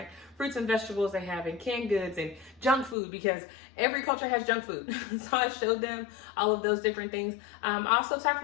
fruits and vegetables they have in canned goods and junk food, because every culture has junk food. So I showed them all of those different things. I also talked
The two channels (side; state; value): right; drops out; at 3.0 s